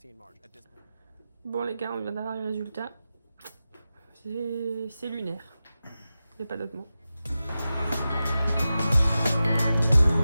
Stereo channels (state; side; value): inverted; both; correlation -0.93